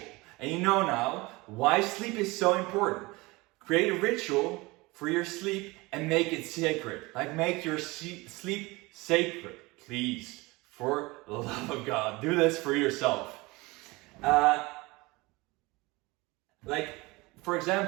And you know now why sleep is so important. Create a ritual for your sleep and make it sacred. Like, make your sleep sacred, please. For the love of God, do this for yourself. Like, for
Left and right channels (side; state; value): left; quieter; 23.1 dB